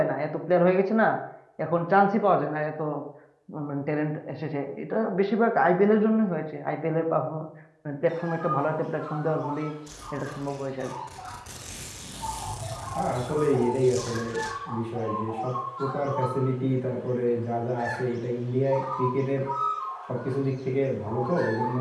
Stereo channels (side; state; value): both; identical; correlation 1.00